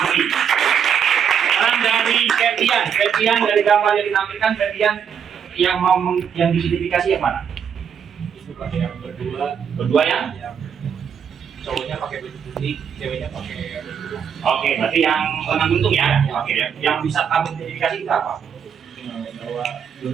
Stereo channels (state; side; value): quieter; left; 7.7 dB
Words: Sekarang dari Febian dari gambar yang ditampilkan, Febian yang mau yang diidentifikasi yang mana? Itu pakai yang Berdua ya? cowoknya pakai baju putih, ceweknya pakai baju. Oke, berarti yang lengan buntung ya? Oke, yang bisa kamu identifikasi itu apa? Bahwa